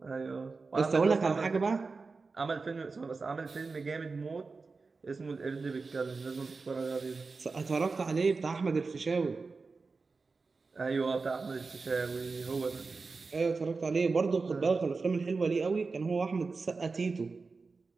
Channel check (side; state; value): left; quieter; 4.2 dB